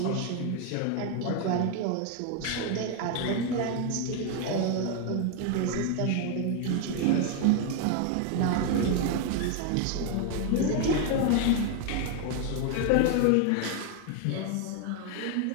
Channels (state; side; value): different; both; correlation 0.01